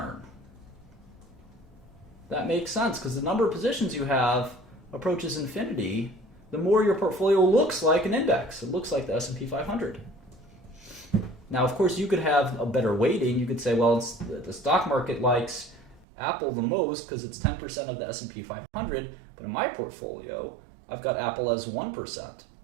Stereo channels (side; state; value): left; drops out; at 16.1 s